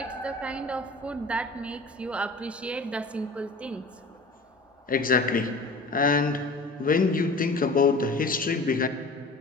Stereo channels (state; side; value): quieter; right; 3.1 dB